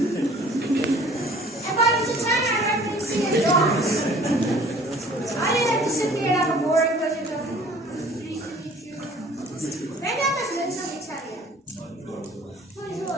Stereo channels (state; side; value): normal; both; correlation 0.51